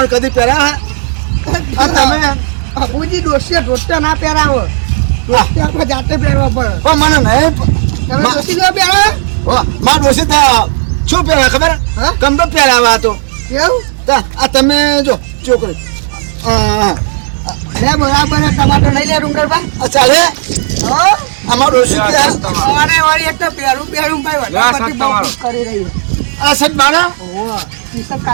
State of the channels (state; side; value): silent; left; digital silence